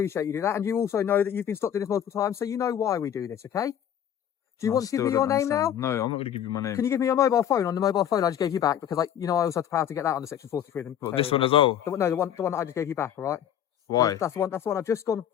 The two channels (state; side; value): quieter; right; 9.8 dB